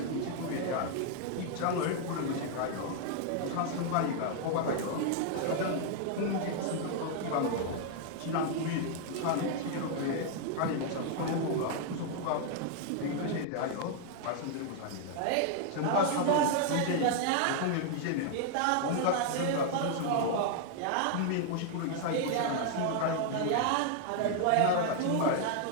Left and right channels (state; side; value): different; both; correlation 0.00